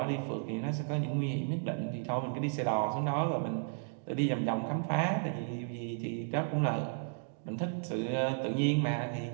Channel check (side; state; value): left; silent; digital silence